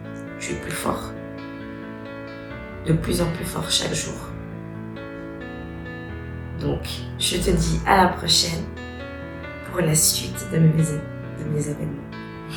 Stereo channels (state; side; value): identical; both; correlation 1.00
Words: Tu es plus fort, de plus en plus fort chaque jour. Donc, je te dis à la prochaine pour la suite de mes événements.